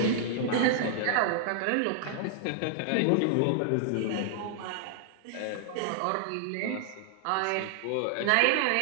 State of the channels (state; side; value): different; both; correlation -0.01